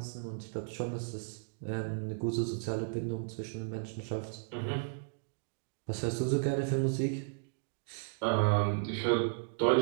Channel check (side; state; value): left; silent; digital silence